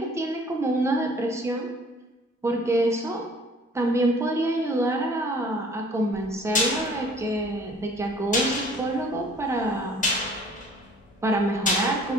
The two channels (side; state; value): both; normal; correlation 0.53